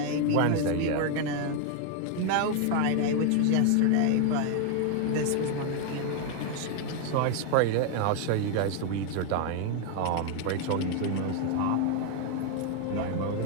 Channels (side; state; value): both; different; correlation 0.01